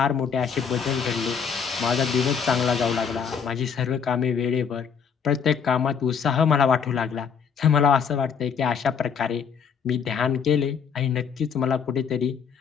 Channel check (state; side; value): quieter; right; 6.8 dB